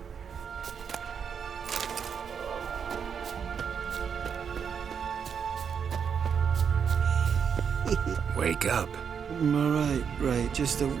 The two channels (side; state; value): left; quieter; 7.0 dB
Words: Wake up. Right. Just a